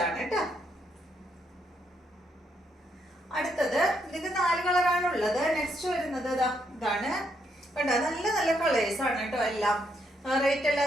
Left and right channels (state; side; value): normal; both; correlation 0.76